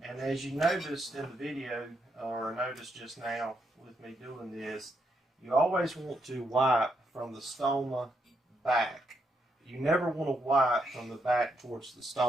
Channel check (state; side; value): normal; both; correlation 0.78